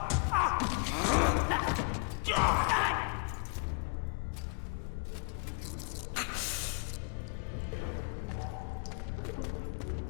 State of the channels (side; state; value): right; quieter; 38.4 dB